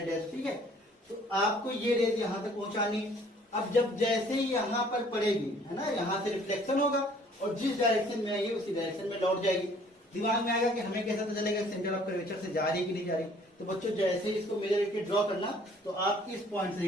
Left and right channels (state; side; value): normal; both; correlation 0.57